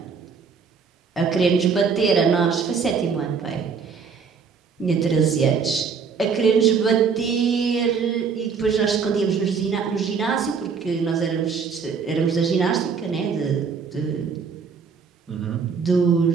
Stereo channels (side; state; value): left; quieter; 5.8 dB